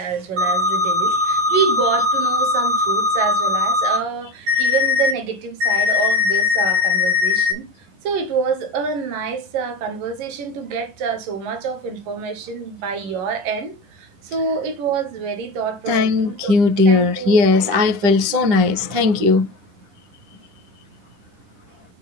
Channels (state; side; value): late; left; 9.9 ms